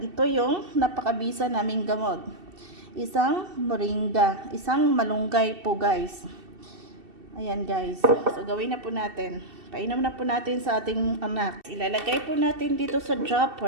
yung napakabisa naming gamot. Isang moringa, isang malunggay po guys. Ayan guys. So gawin na po natin. Painom na po natin sa ating anak. Ilalagay po natin dito sa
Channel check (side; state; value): left; late; 2.7 ms